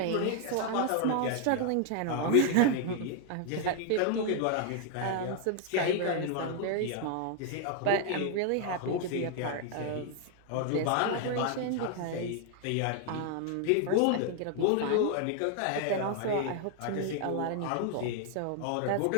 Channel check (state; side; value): different; both; correlation 0.00